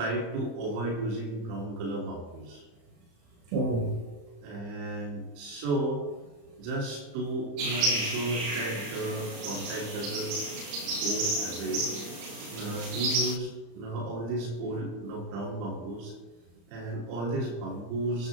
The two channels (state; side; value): late; left; 35 ms